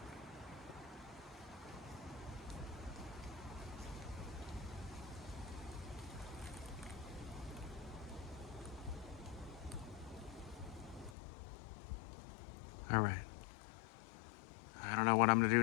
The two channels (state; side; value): drops out; right; at 11.2 s